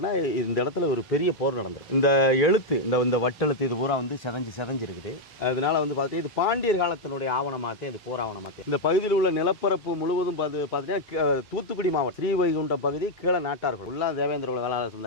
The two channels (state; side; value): normal; both; correlation 0.00